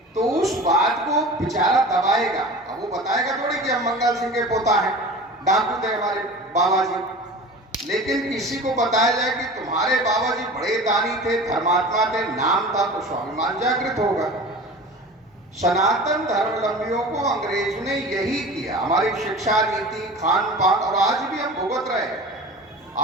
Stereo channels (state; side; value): normal; both; correlation 0.37